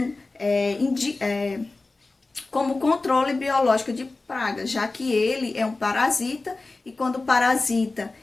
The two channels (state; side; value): quieter; right; 3.4 dB